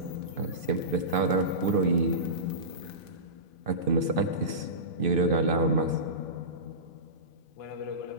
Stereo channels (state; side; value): late; left; 2.5 ms